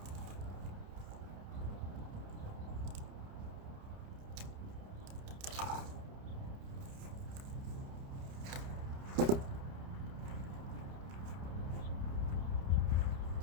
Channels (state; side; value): late; left; 30 ms